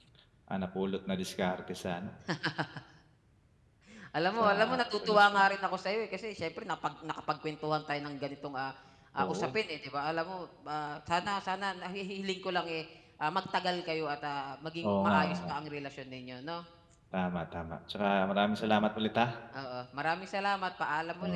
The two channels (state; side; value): identical; both; correlation 1.00